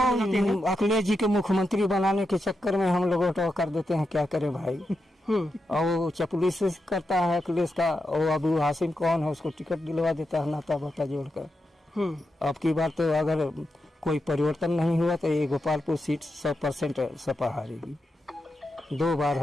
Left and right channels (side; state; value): both; normal; correlation 0.87